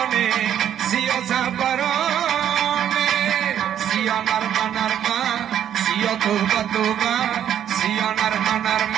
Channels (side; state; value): left; quieter; 10.1 dB